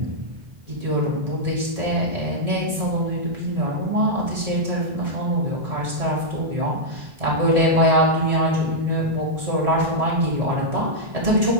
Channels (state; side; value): late; left; 1.7 ms